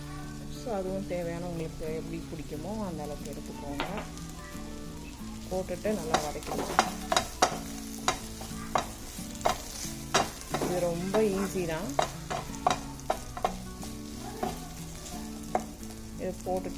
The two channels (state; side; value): identical; both; correlation 1.00